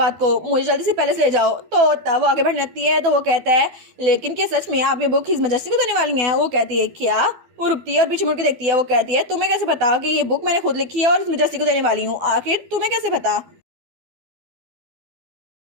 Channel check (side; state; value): left; late; 12 ms